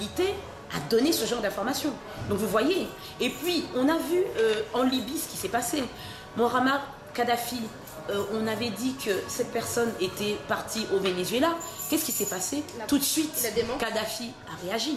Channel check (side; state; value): both; identical; correlation 1.00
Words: à donner ce genre d'informations. Donc vous voyez. Et puis, on a vu en Libye ce qui s'est passé. Muammar Kadhafi, on avait dit que cette personne était partie au Venezuela. Qu'est-ce qui s'est passé? Tout de suite, Kadhafi a